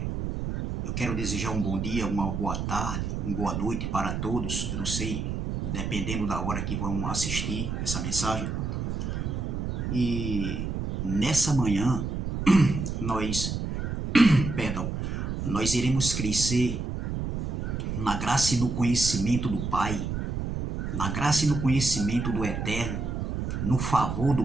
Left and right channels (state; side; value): noise; right; rumble, 3 dB below the sound